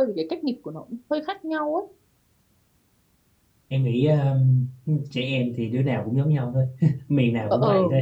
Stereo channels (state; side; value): identical; both; correlation 1.00